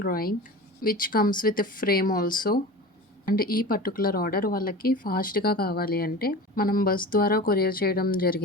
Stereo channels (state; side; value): normal; both; correlation 0.33